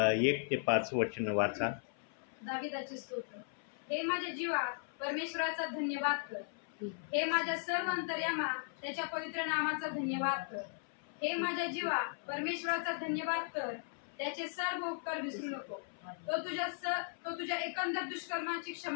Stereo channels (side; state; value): right; silent; 53 dB below the other